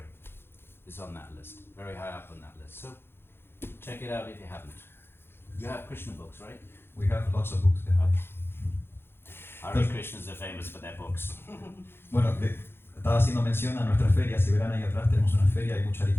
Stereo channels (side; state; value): right; late; 0.11 ms